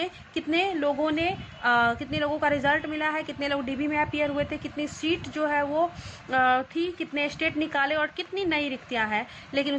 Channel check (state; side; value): identical; both; correlation 1.00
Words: कितने लोगों का रिजल्ट मिला है, कितने लोग डीबी में अपीयर हुए थे, कितनी सीट जो है वो थी, कितने स्टेट निकाले और कितनी नई रिक्तियाँ हैं। लेकिन